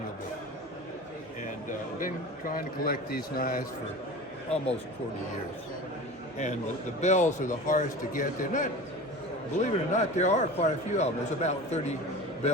Bell. And been trying to collect these knives for almost 40 years. And the bells are the hardest to get. They're not, believe it or not, there are quite a few of them. There's about 30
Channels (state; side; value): normal; both; correlation 0.34